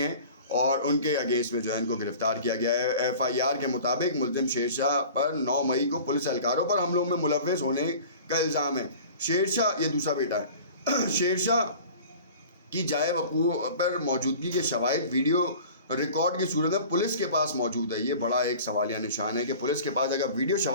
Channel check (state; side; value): inverted; both; correlation -0.42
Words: اور ان کے اگینسٹ میں جو ہے ان کو گرفتار کیا گیا ہے. ایف آئی آر کے مطابق ملزم شیر شاہ پر 9 مئی کو پولیس اہلکاروں پر حملوں میں ملوث ہونے کا الزام ہے. شیر شاہ, یہ دوسرا بیٹا ہے, شیر شاہ کی جائے وقوع پر موجودگی کے شواہد ویڈیو ریکارڈ کی صورت میں پولیس کے پاس موجود ہے. یہ بڑا ایک سوالیہ نشان ہے کہ پولیس کے پاس اگر ویڈیو